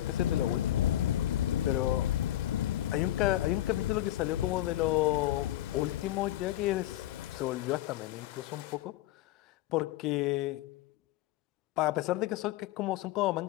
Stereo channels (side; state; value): right; quieter; 14.0 dB